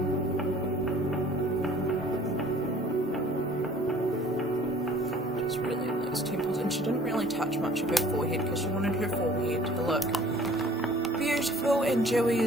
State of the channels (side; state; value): both; normal; correlation 0.52